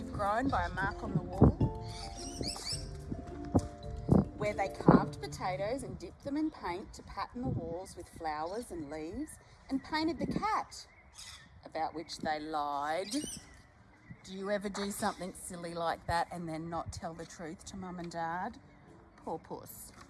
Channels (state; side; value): identical; both; correlation 1.00